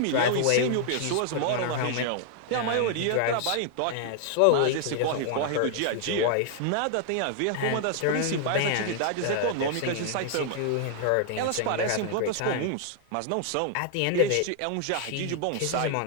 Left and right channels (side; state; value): both; different; correlation 0.00